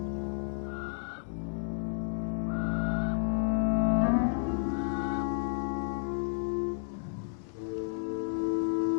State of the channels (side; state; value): right; silent; digital silence